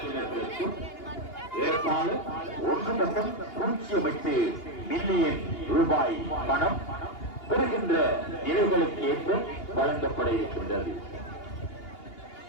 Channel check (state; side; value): late; right; 2.8 ms